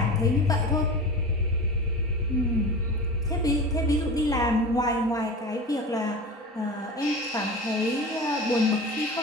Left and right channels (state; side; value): normal; both; correlation 0.31